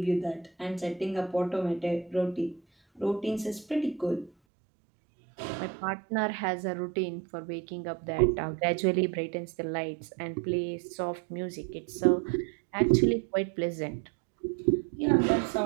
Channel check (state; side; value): drops out; left; at 4.3 s